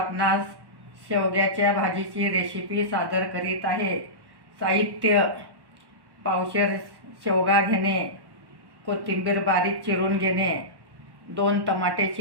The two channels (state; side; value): late; left; 1.1 ms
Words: शेवग्याच्या भाजीची रेसिपी सादर करीत आहे. साहित्य: पावशेर शेवगा घेणे, कोथिंबीर बारीक चिरून घेणे, 2 टमाटे